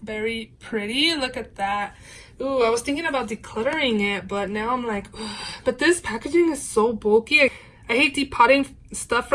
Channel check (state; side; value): identical; both; correlation 1.00